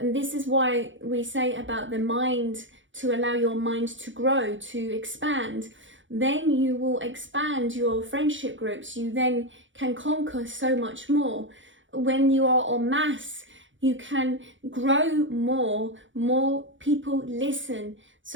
this is why we say about the mind, to allow your mind to grow, to expand. Then you will expand your friendship groups. You then can conquer so much more. When you are en masse, you can grow more people listen.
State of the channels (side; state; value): left; late; 0.56 ms